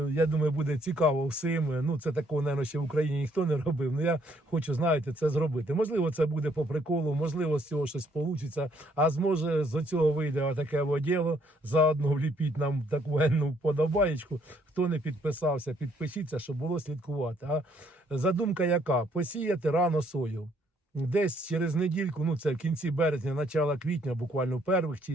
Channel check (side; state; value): both; normal; correlation 0.67